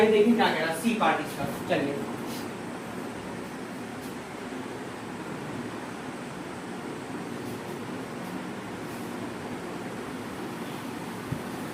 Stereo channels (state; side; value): identical; both; correlation 1.00